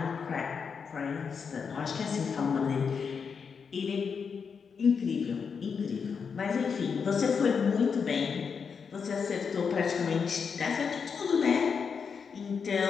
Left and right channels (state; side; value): quieter; right; 6.0 dB